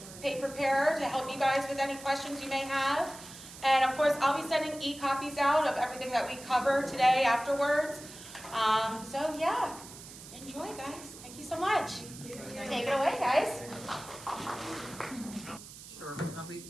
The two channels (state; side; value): noise; right; hiss, 15 dB below the sound